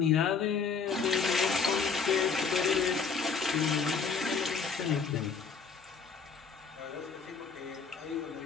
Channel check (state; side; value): quieter; right; 5.5 dB